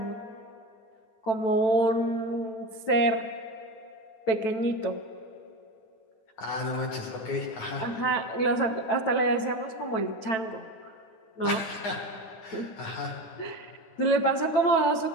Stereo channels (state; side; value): late; right; 9.1 ms